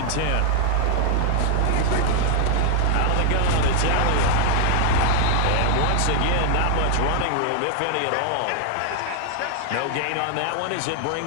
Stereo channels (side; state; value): both; different; correlation 0.00